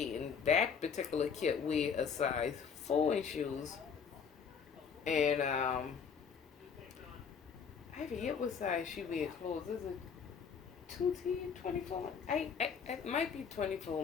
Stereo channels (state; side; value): quieter; right; 6.5 dB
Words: that particular kit wear a size 4 in shoes. And I forget what size she wear clothes. Is it 2T, 24? It might be